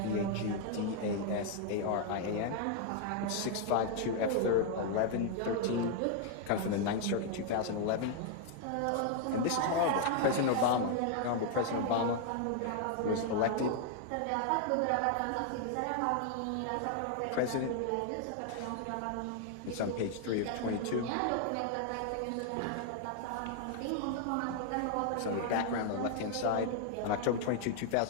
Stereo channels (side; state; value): both; different; correlation 0.00